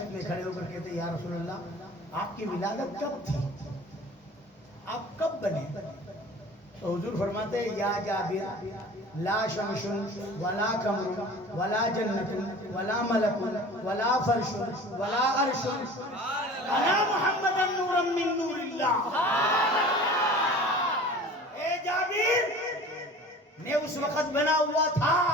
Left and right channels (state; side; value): normal; both; correlation 0.42